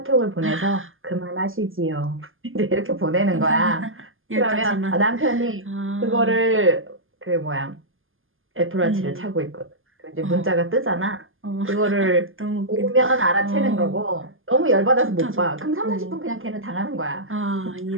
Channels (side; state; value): left; late; 0.59 ms